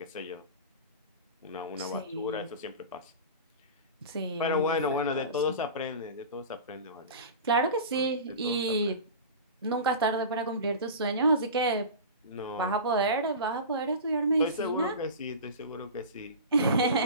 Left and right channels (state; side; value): inverted; both; correlation -0.31